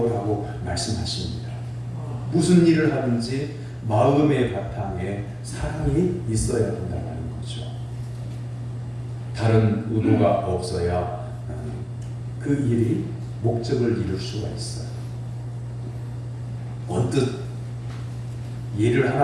라고 말씀하십니다. 무슨 일을 하든지 마음의 바탕에 사랑이 있어야 된다는 거죠. 다른 의도가 없어야 그 일이 목적을 이룰 수가 있어요. 언뜻 예를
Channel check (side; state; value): both; identical; correlation 1.00